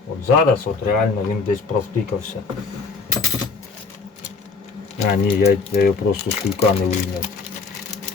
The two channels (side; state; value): right; quieter; 4.6 dB